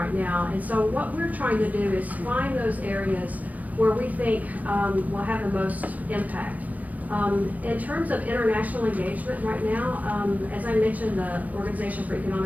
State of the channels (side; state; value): left; late; 0.077 ms